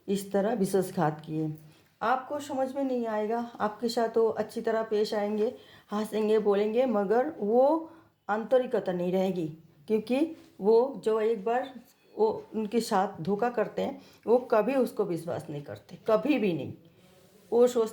इस तरह विश्वासघात किए। आपको समझ में नहीं आएगा, आपके साथ वो अच्छी तरह पेश आएंगे, हंसेंगे, बोलेंगे, मगर वो आंतरिकता नहीं रहेगी, क्योंकि वो जो एक बार वो उनके साथ धोखा करते हैं वो कभी उसको विश्वास नहीं करते, कभी भी नहीं। वो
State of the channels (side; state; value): both; identical; correlation 1.00